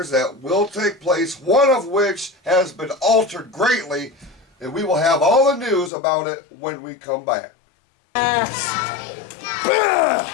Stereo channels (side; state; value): right; drops out; at 5.9 s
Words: that will take place, one of which has been altered greatly, and we will have all the news about it when we come back. And